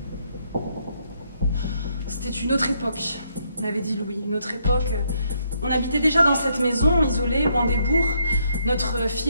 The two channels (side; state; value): both; inverted; correlation -0.73